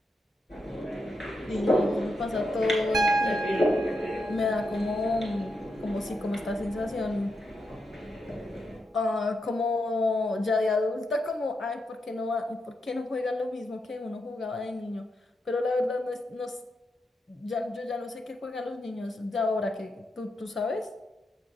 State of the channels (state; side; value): normal; both; correlation 0.84